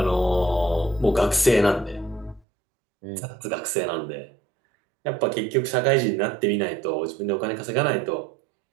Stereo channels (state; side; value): drops out; left; at 2.4 s